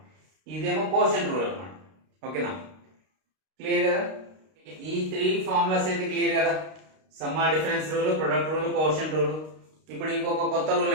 ఇదేమో quotient rule అనమాట. ఓకేనా, క్లియర్ కదా. ఈ 3 ఫార్ములాస్ అయితే క్లియర్ కదా. Summer difference rule, product rule, quotient rule. ఇప్పుడు ఇంకొక కొత్త రూల్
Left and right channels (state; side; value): late; left; 32 ms